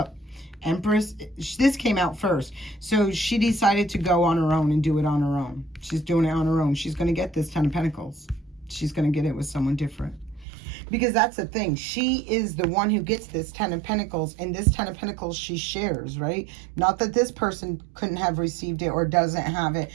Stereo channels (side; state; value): left; drops out; at 10.5 s